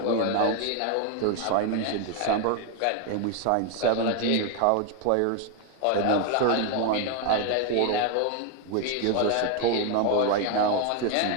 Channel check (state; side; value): different; both; correlation 0.01